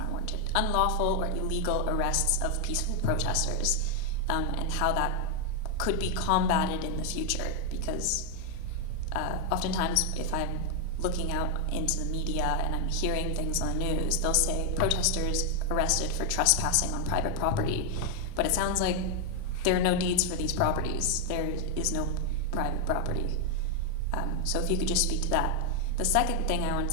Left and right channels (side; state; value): both; normal; correlation 0.01